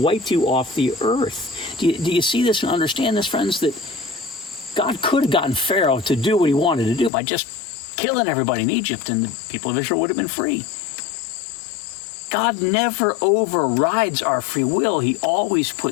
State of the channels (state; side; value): drops out; right; at 7.1 s